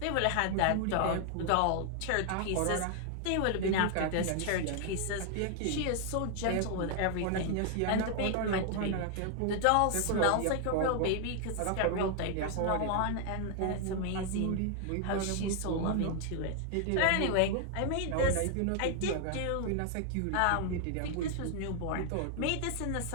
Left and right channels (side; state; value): both; different; correlation 0.00